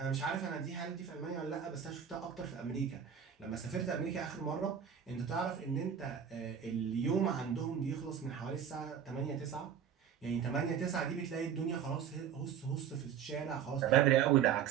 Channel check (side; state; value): left; quieter; 8.2 dB